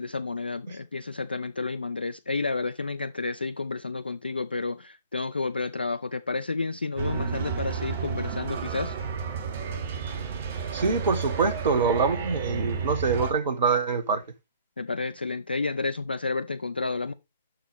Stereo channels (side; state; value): both; inverted; correlation -0.55